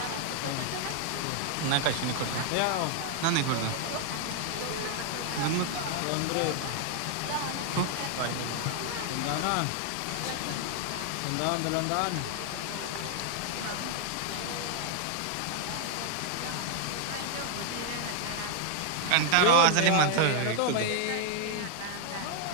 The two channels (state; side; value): different; both; correlation 0.00